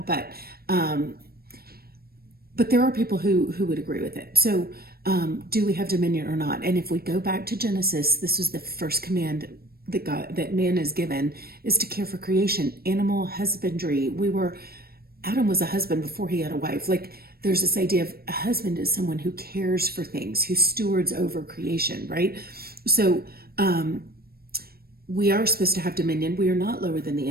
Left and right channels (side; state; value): left; late; 0.44 ms